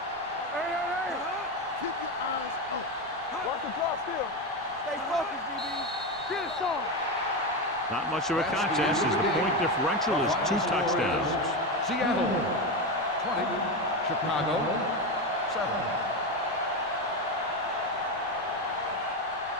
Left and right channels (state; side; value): noise; right; rumble, 25 dB below the sound